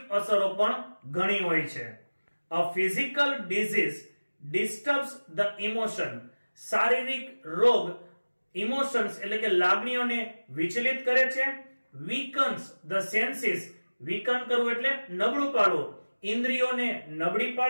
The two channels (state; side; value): inverted; both; correlation -1.00